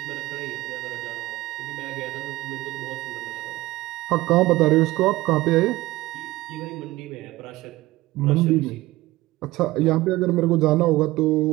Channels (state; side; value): quieter; left; 18.4 dB